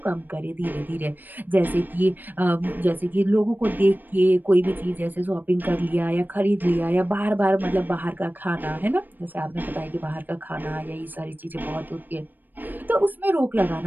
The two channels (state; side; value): late; left; 0.090 ms